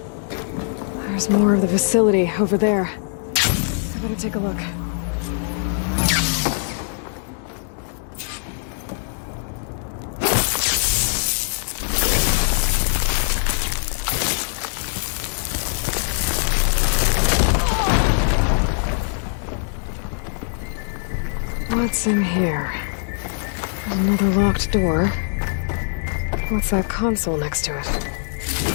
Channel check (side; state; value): right; silent; digital silence